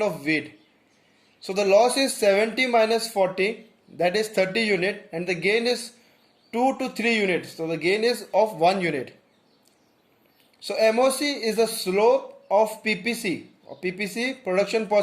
of wheat. So the loss is 70 minus 40, that is 30 unit, and the gain is 2 to 3 units. So the gain is of 1 unit. So MOC is the slope of PPC, or PPC, production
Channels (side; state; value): both; identical; correlation 1.00